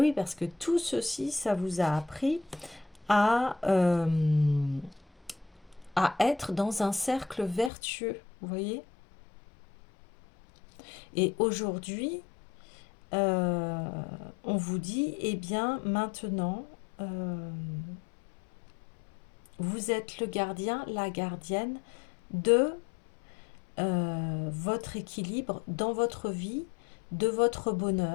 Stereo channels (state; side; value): drops out; right; at 7.7 s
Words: parce que tout ceci, ça vous a appris à être dans un cercle vertueux, vous voyez. Et aujourd'hui, on vous dit, eh bien, maintenant, vous êtes le gardien, la gardienne de votre équilibre dans votre vie, de votre